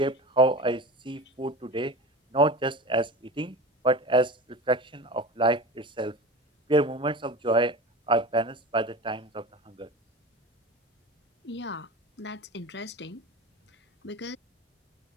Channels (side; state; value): both; normal; correlation 0.32